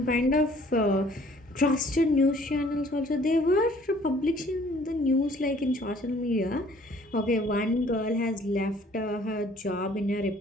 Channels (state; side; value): normal; both; correlation 0.57